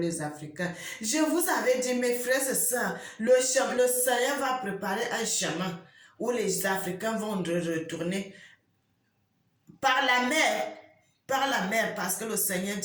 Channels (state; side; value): identical; both; correlation 1.00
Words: Africains. Je vous avais dit, mes frères et sœurs, le Seigneur va préparer un chemin où les Africains vont retourner par la mer. par la mer, parce que le Seigneur